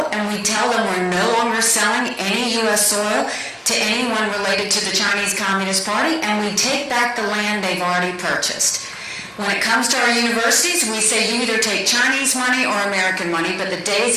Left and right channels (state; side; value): identical; both; correlation 1.00